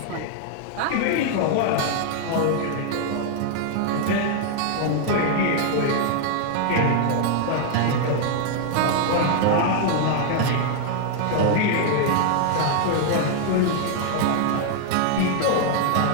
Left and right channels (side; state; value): both; different; correlation 0.00